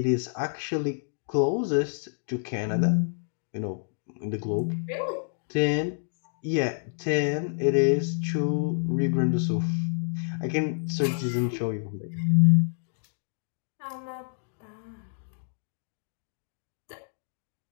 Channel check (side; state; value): right; silent; digital silence